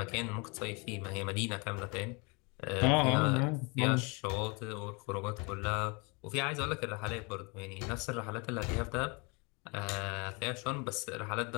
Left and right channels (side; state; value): right; quieter; 30.6 dB